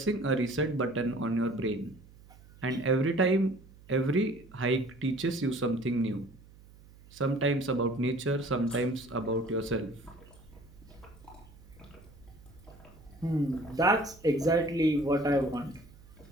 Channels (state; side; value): noise; right; hum, 23 dB below the sound